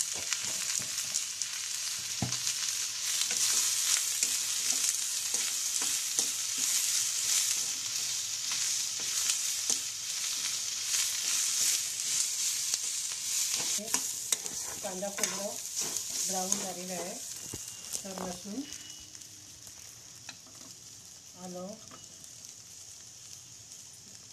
कांदा खोबरं ब्राऊन झालेलं आहे. तर लसूण, आलं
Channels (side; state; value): both; identical; correlation 1.00